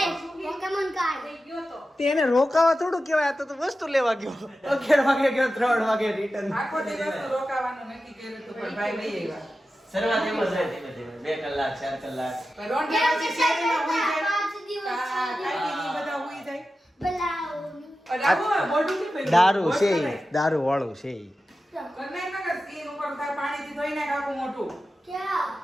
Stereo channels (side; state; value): both; normal; correlation 0.93